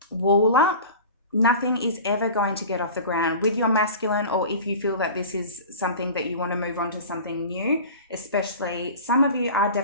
wall up, nothing is ever going to get off the ground with your masculine, or if you feel that this is something that you want to move on to something new, especially some of you are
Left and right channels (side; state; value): both; inverted; correlation -0.37